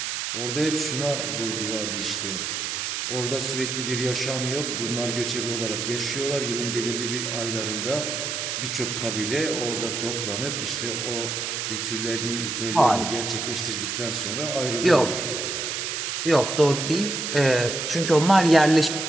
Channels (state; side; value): noise; right; hiss, 2 dB below the sound